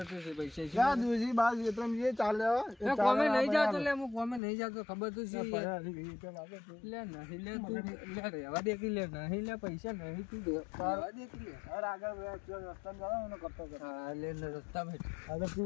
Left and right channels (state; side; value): drops out; right; at 4.4 s